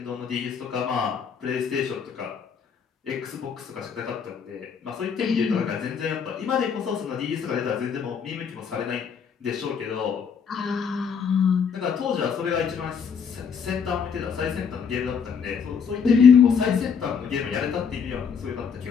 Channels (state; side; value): quieter; right; 6.5 dB